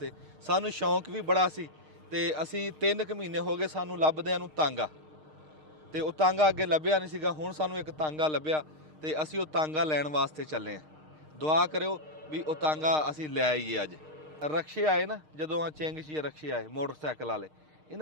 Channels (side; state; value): left; late; 6.5 ms